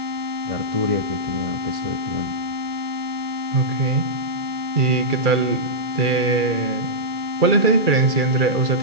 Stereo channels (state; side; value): late; left; 2.3 ms